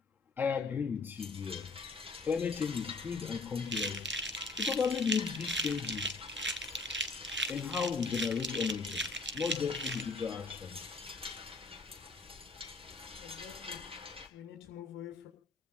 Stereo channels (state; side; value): quieter; right; 3.7 dB